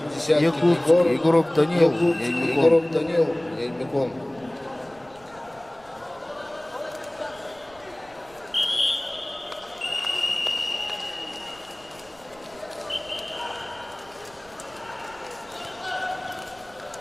Десяткин Якутск, Егор, Егоров Данил, Якутск, Аймикон. Егоров Данил, Аймикон.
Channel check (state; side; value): noise; right; rumble, 26 dB below the sound